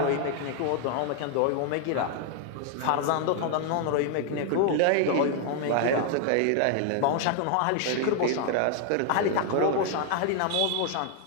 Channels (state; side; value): different; both; correlation 0.00